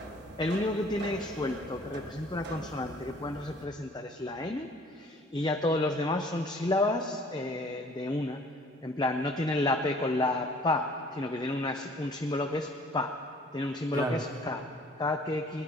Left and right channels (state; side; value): normal; both; correlation 0.54